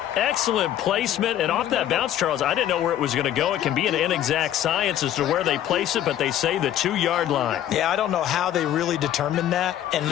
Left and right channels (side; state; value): right; quieter; 11.6 dB